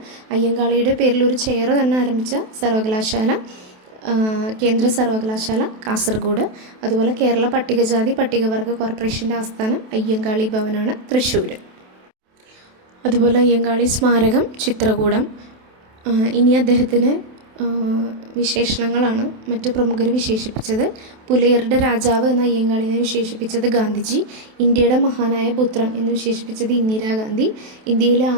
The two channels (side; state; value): left; late; 28 ms